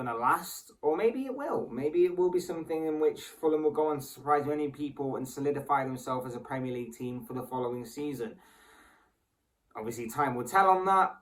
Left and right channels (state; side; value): identical; both; correlation 1.00